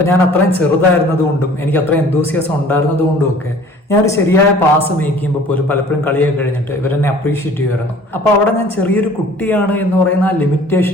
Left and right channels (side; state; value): both; normal; correlation 0.50